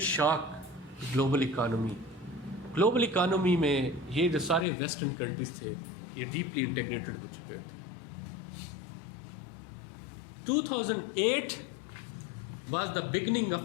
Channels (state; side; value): drops out; right; at 4.7 s